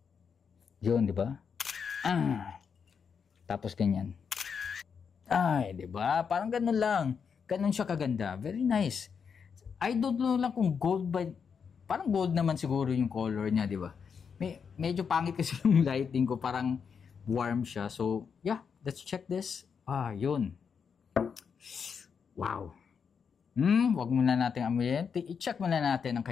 Yun, di ba? Tapos ganyan. Ay, di ba? Parang ganun lang. Ganun siya kaganda. Very nice. I don't know lang kung gold ba. Parang gold naman siguro yung color niya, di ba? Medyo pangit kasi yung lighting ko. Parang warm siya. So, yeah. Let's check this. Yun. Wow. Wag muna natin amoyin. I-check muna natin ang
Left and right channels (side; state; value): right; quieter; 6.4 dB